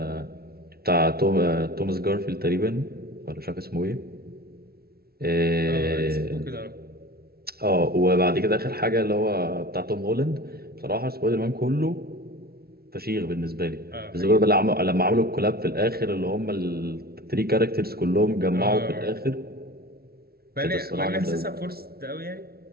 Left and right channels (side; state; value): left; late; 0.45 ms